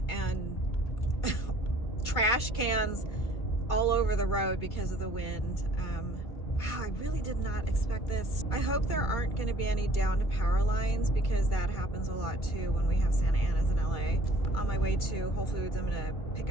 and trash cans all over the road because of the wind. Wow, I really did not expect this. I hope there aren't going to be any downed power lines because that happens a lot too when we have Santa Ana's in LA. On my way to Whole Foods, I'm going to pick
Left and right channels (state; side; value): late; right; 2.3 ms